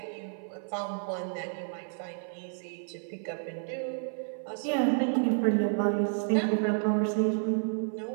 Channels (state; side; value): silent; left; 56 dB below the other